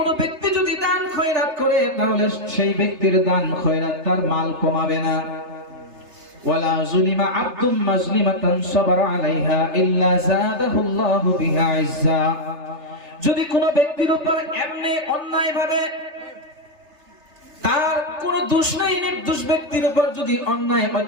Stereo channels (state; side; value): late; left; 3.3 ms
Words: ব্যক্তি যদি দান খয়রাত করে, তাহলে সেই ব্যক্তির দান খয়রাত তার মাল কমাবে না। ওয়ালা যুলিমা আবদুম মাজলিমাতান সাবারা আলাইহা ইল্লা যাদাহুল্লাহু বিহা ইজ্জা, যদি কোন ব্যক্তির উপর এমনি অন্যায় ভাবে, তার কোন দোষ নাই, নির্দোষ ব্যক্তির উপর যদি অন্যায়